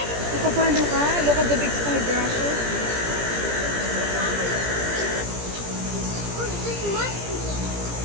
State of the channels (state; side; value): late; left; 17 ms